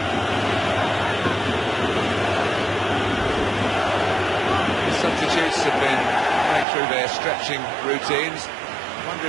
The substitutes have been going through their stretching routines. I wonder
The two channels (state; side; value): drops out; left; at 6.7 s